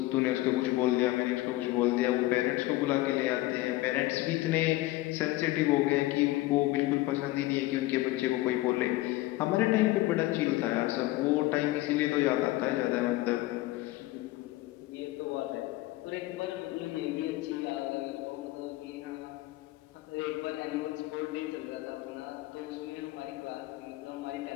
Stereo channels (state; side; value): quieter; right; 18.1 dB